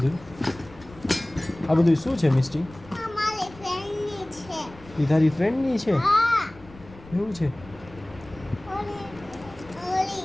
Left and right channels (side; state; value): left; noise; rumble, 20 dB below the sound